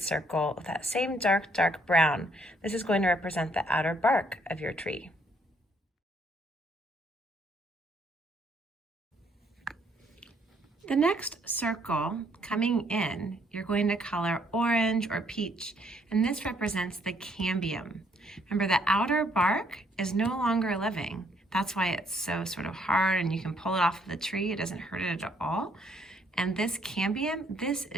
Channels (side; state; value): both; normal; correlation 0.67